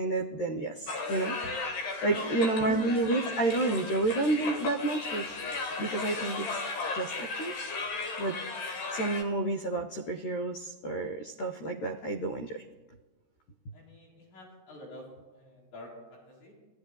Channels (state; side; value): late; right; 13 ms